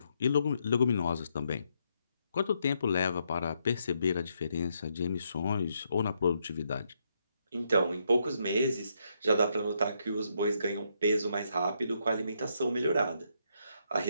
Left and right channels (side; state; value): both; inverted; correlation -0.76